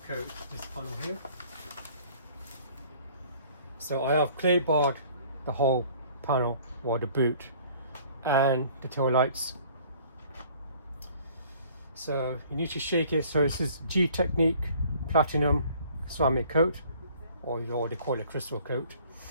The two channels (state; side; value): inverted; both; correlation -0.54